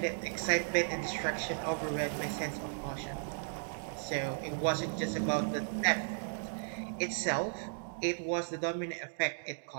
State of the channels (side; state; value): left; silent; digital silence